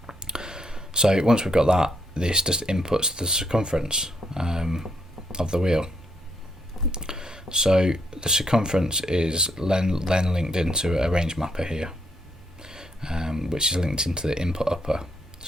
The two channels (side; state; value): both; normal; correlation 0.76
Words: So once we've got that, this just inputs the circumference of the wheel. So the circumference is then linked into a range mapper here, which is linked into the input upper.